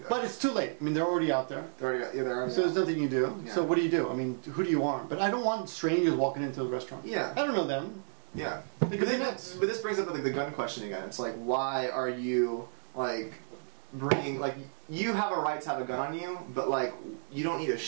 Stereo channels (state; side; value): silent; left; digital silence